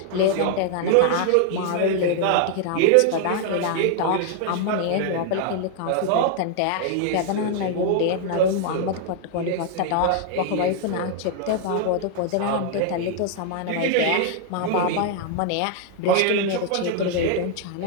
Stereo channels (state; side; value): different; both; correlation 0.00